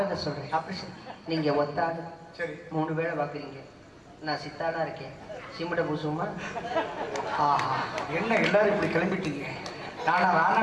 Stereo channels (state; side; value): identical; both; correlation 1.00